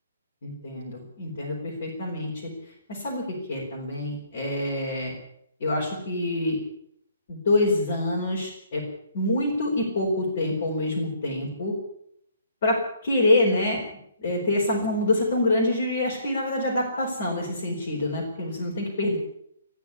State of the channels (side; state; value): both; inverted; correlation -0.63